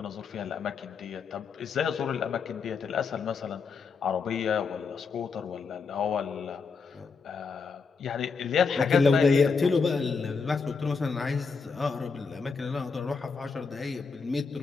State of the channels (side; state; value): right; quieter; 5.1 dB